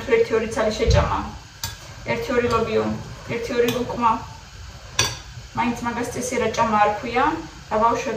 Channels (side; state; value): both; identical; correlation 1.00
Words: თუ 1-2 ცალი შეჭამა. 1-2 ლობიო, 1-2 ლუკმა. მაინც მაგას წესი რა ჭამა არ ქვია. და